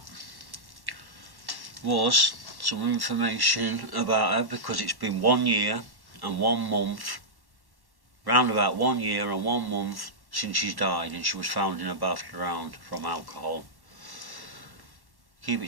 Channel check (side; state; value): left; late; 1.1 ms